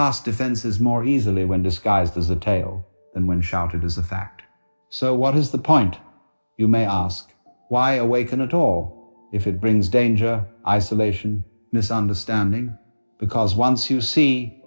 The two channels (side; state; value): both; inverted; correlation -1.00